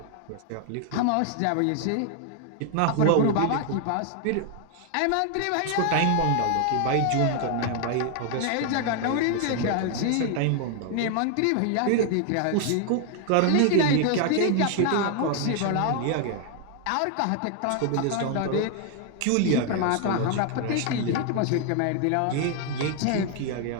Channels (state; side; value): different; both; correlation 0.00